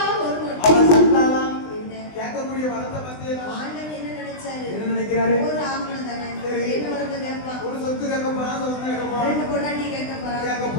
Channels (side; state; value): right; late; 20 ms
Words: வரும். அவன் சந்தானா என்ன கேட்கக்கூடிய வரத்தை பத்தியா? ஆண்டவன் என்ன நினைச்சாரு? என்ன நினைக்கிறாரு? ஒரு ஆம்பளை தானே, என்ன வரத்தை கேட்பான்? ஒரு சொத்து கேட்க போறான், சொத்து கேட்க போறான், 2 பொண்டாட்டி கேட்க கேட்க